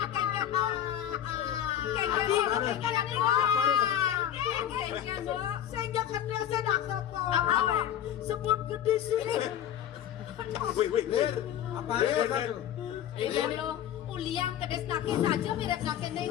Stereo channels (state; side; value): quieter; right; 10.7 dB